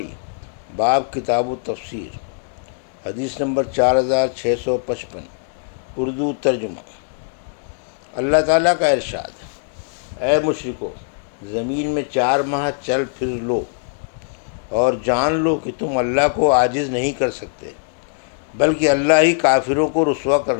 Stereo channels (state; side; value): silent; right; 65 dB below the other